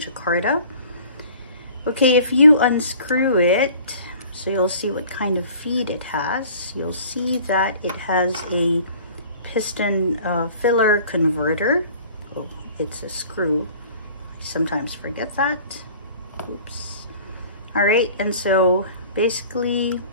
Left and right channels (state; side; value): inverted; both; correlation -0.48